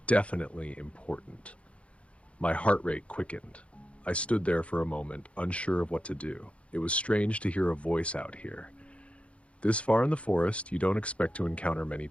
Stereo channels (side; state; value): right; late; 0.062 ms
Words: definitely important. My heart rate quickened. I stood there for a moment, unsure of what to do. It was strange to hear a voice out here. This far in the forest, you don't expect to encounter many